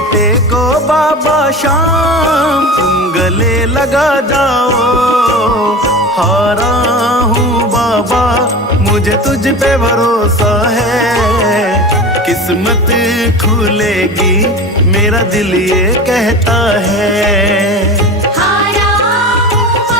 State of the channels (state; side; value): normal; both; correlation 0.31